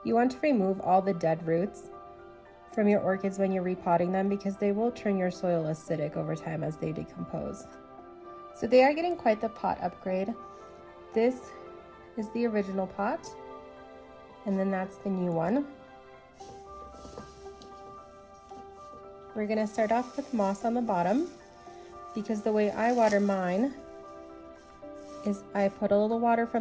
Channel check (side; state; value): both; identical; correlation 1.00